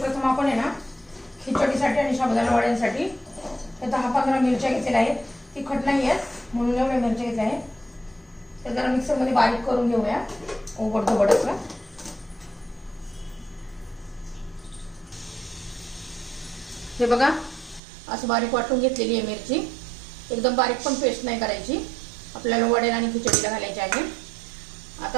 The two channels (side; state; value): left; drops out; at 17.8 s